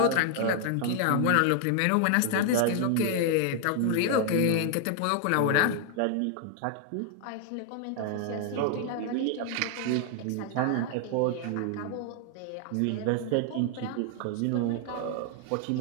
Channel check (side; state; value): both; different; correlation 0.00